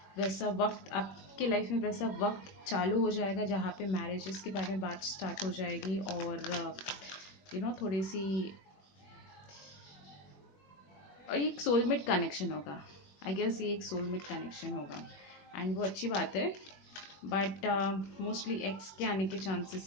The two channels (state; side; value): late; right; 21 ms